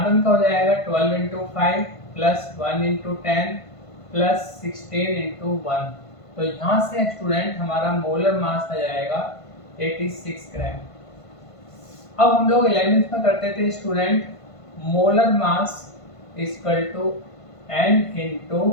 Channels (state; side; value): late; right; 1.5 ms